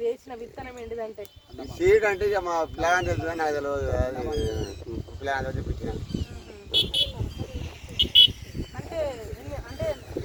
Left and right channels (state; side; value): identical; both; correlation 1.00